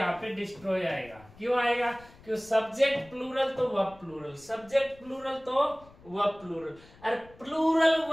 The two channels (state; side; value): noise; left; rumble, 24 dB below the sound